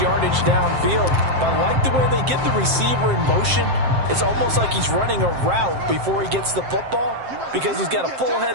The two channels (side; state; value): left; late; 7.6 ms